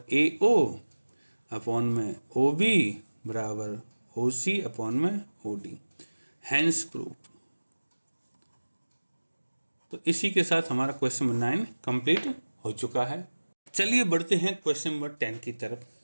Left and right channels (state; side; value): inverted; both; correlation -1.00